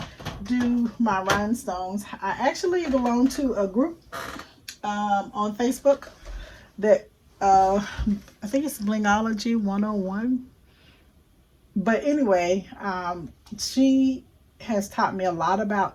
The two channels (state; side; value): identical; both; correlation 1.00